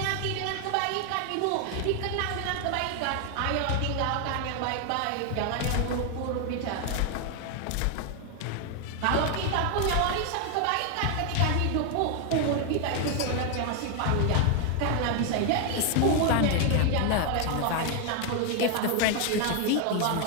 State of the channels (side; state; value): both; different; correlation 0.01